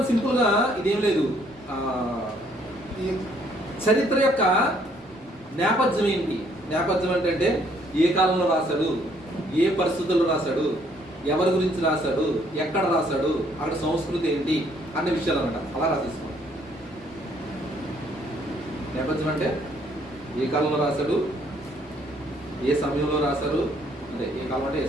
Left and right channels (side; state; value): right; noise; rumble, 28 dB below the sound